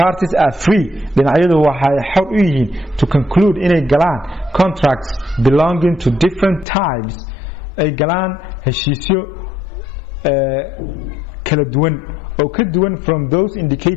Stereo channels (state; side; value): drops out; right; at 6.7 s